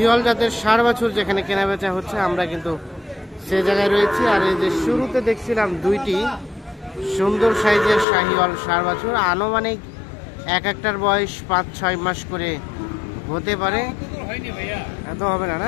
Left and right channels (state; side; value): drops out; right; at 8.1 s